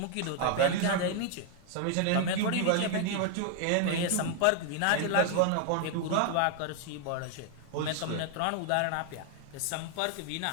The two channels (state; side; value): different; both; correlation 0.00